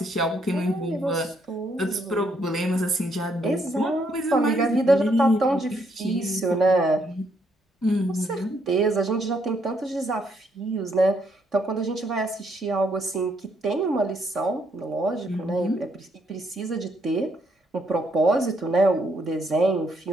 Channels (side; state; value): both; normal; correlation 0.73